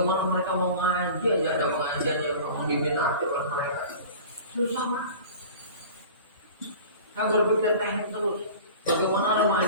mereka mau ngaji aja, ada pengajian yang memang diminati oleh mereka. Susah kan? Saya berpikir teknik terus. Bagaimana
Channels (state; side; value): inverted; both; correlation -0.40